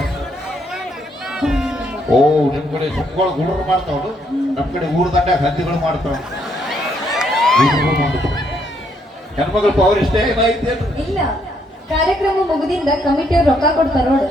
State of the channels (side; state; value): both; normal; correlation 0.72